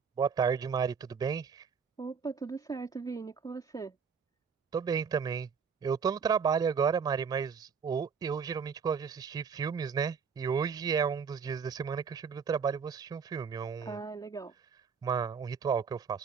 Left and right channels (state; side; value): quieter; left; 6.2 dB